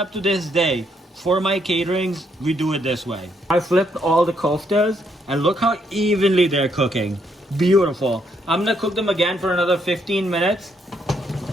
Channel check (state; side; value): normal; both; correlation 0.73